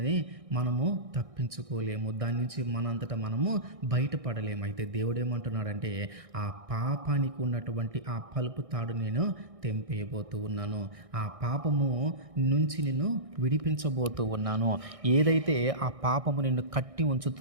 మనము తప్పించుకోలేము, దాని నుంచి మనంతటా మనము బయటపడలేము. అయితే దేవుడు ఏమంటున్నాడంటే, ఆ పాపానికి ఉన్నటువంటి ఆ పలుపు తాడు నేను తెంపేయబోతూ ఉన్నాను, ఆ పాపము నుంచి నిన్ను విడిపించబోతూ ఉన్నాను. ఏదైతే ఆ పాపము నిన్ను కట్టి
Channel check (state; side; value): late; left; 1.6 ms